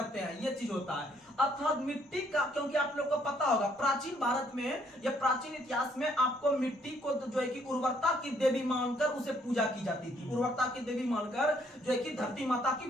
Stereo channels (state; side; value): normal; both; correlation 0.67